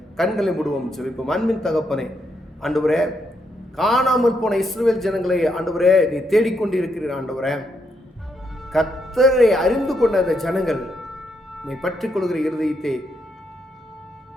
கண்களை மூடுவோம் ஜெபிப்போம். அன்பின் தகப்பனே, ஆண்டவரே, காணாமல் போன இஸ்ரவேல் ஜனங்களை ஆண்டவரே நீ தேடிக்கொண்டிருக்கிறீர். ஆண்டவரே, கர்த்தரை அறிந்து கொண்ட அந்த ஜனங்கள் உம்மை பற்றிக் கொள்கிற இருதயத்தை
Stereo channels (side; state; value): both; normal; correlation 0.78